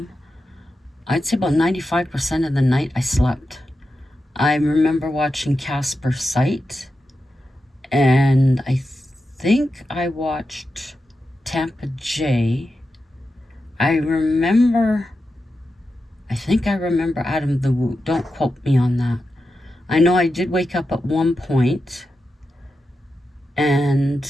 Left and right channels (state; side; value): normal; both; correlation 0.90